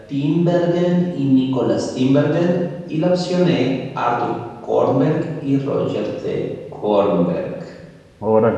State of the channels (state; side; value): identical; both; correlation 1.00